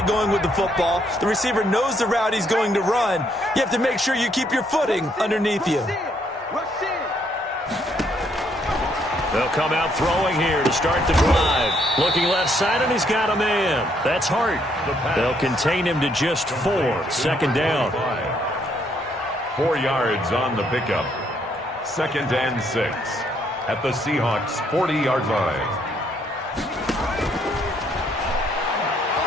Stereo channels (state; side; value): normal; both; correlation 0.71